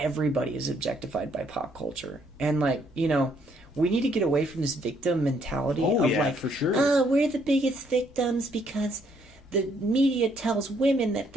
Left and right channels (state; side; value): normal; both; correlation 0.69